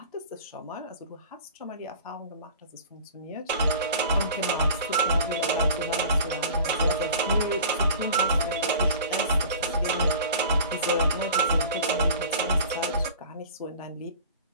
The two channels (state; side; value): inverted; both; correlation -0.41